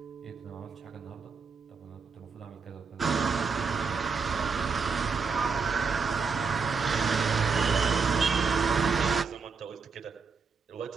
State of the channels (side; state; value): left; quieter; 5.2 dB